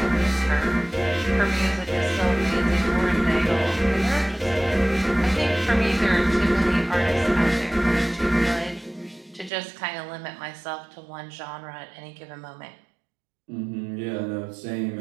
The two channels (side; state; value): left; drops out; at 9.5 s